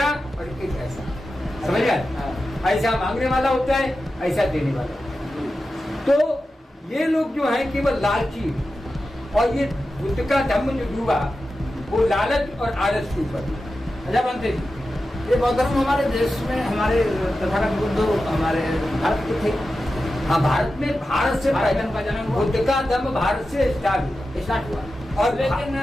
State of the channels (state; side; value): normal; both; correlation 0.92